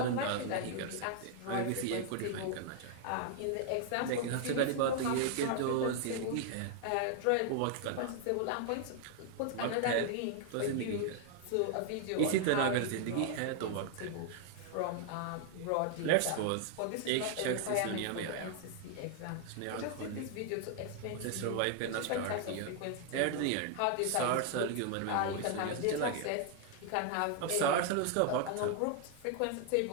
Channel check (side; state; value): both; different; correlation 0.00